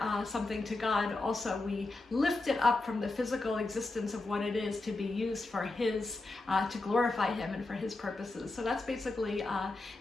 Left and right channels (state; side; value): quieter; right; 3.1 dB